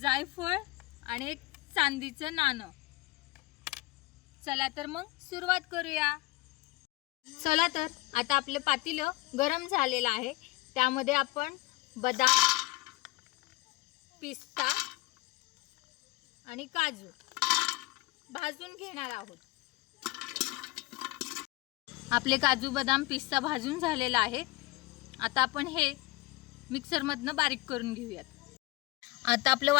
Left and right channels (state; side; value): quieter; right; 21.2 dB